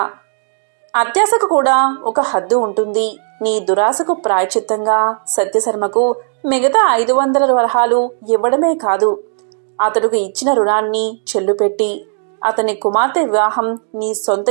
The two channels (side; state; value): left; silent; digital silence